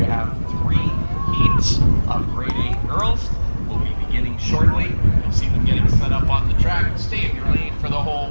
have 3 heats of grade 8 girls. We'll be beginning shortly. You'll see them getting set up on the track. Stay in your lane for the whole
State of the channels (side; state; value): both; inverted; correlation -1.00